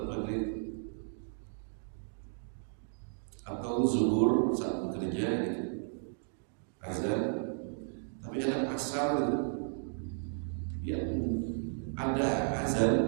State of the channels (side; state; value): left; silent; digital silence